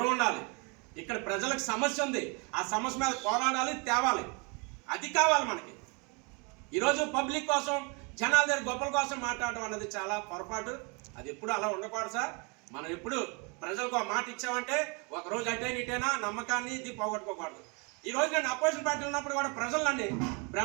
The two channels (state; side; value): quieter; left; 31.9 dB